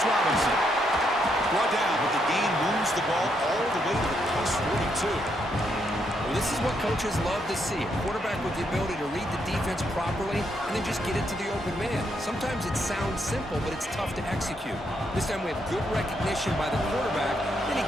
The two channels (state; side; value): normal; both; correlation 0.77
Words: Robinson. Brought down, but the gain moves the ball all the way to the plus 42. Well, this is what coaches love to see. A quarterback with the ability to read the defense properly and then just get it to the open man. Sometimes it sounds simple, but it's tough to execute. This time we have good recognition by the quarterback, then he